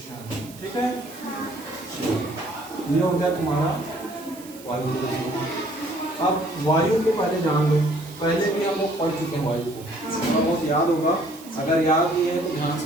ठीक है। ये हो गया तुम्हारा वायु प्रदूषण। अब वायु के पहले जान लो, पहले भी हम लोग पढ़ चुके हैं वायु को, बहुत याद होगा। अगर याद नहीं है तो ध्यान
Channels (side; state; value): right; noise; hiss, 19 dB below the sound